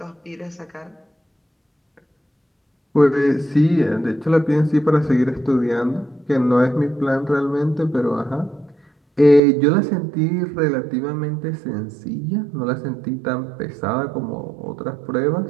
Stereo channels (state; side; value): drops out; left; at 9.4 s